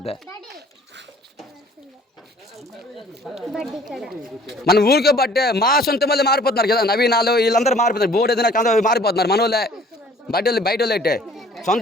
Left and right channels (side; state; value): both; normal; correlation 0.53